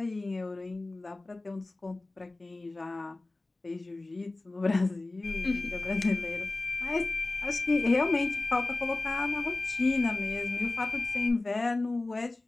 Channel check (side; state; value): right; quieter; 3.0 dB